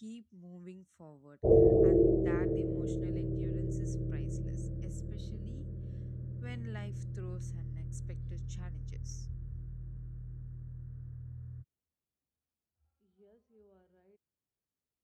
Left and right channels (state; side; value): identical; both; correlation 1.00